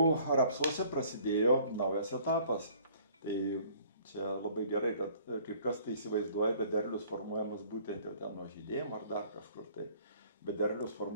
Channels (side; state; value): both; inverted; correlation -0.56